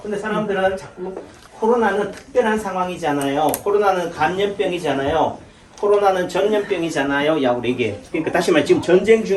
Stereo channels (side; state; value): both; identical; correlation 1.00